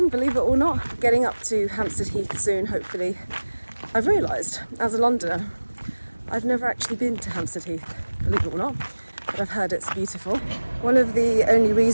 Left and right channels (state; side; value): inverted; both; correlation -1.00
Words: believe it or not. Getting up to Hampstead Heath soon, hopefully. I've realised, as a Londoner, I've never actually been to Hampstead Heath, believe it or not, but I've heard it's beautiful. One of the only